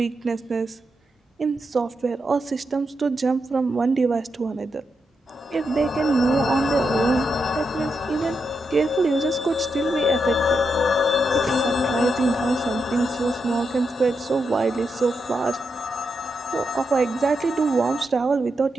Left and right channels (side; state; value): both; normal; correlation 0.84